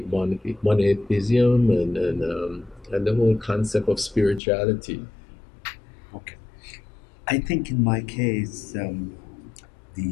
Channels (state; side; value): drops out; right; at 4.4 s